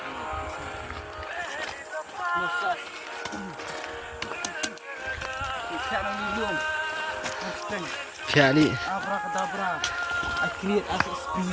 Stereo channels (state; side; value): identical; both; correlation 1.00